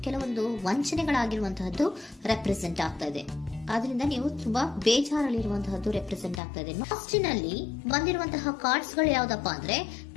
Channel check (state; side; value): drops out; right; at 6.4 s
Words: ಕೆಲವೊಂದು ವಂಚನೆಗಳಾಗಿರುವಂತಹದ್ದು ರೆಪ್ರೆಸೆಂಟ್ ಆಗ್ತಾ ಇದೆ. ಆದ್ರಿಂದ ನೀವು ತುಂಬಾ ಬೇಜಾರಲ್ಲಿರುವಂತಹದ್ದು ರೆಪ್ರೆಸೆಂಟ್ ಆಗ್ತಾ ಇದೆ. ಲಾಸ್ಟಿನಲ್ಲಿ ಬಂದಿರುವಂತಹ ಕಾರ್ಡ್ಸ್ ಗಳು ಯಾವ್ದಪ್ಪ ಅಂದ್ರೆ